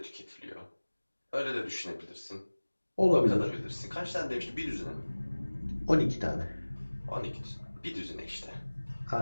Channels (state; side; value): inverted; both; correlation -1.00